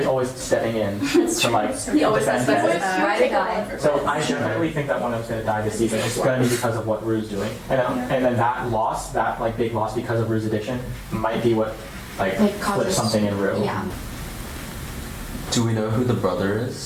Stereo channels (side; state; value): both; identical; correlation 1.00